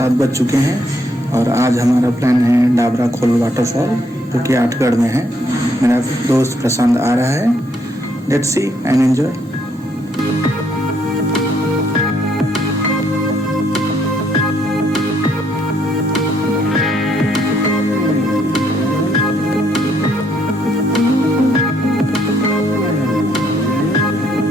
बज चुके हैं और आज हमारा प्लान है डाबरा खोल वाटरफॉल जो कि आठगढ़ में है। मेरा दोस्त प्रशांत आ रहा है। Let's see and enjoy.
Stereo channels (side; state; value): both; normal; correlation 0.71